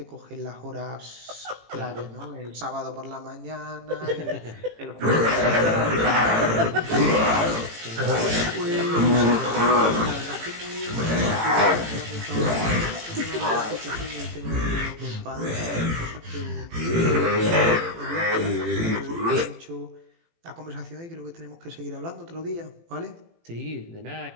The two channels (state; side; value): late; left; 18 ms